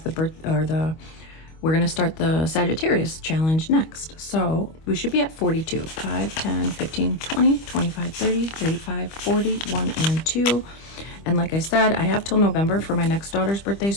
we're going to start the Sagittarius challenge next. So we should be at 42. 5, 10, 15, 20, 25, 30, 35, 40, 1, and 2. And like I said, I have till November for my next daughter's birthday,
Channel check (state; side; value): late; right; 25 ms